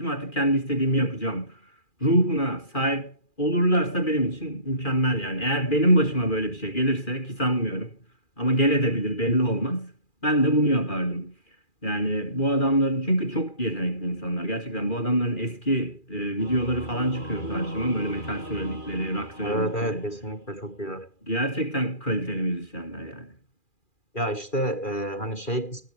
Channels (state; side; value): late; right; 2.4 ms